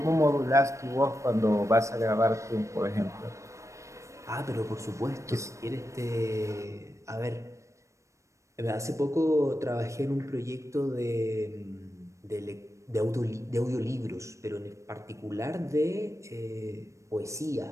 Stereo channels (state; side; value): late; left; 0.15 ms